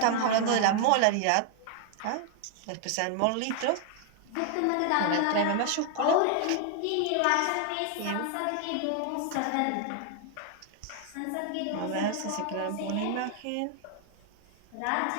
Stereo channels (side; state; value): both; different; correlation 0.00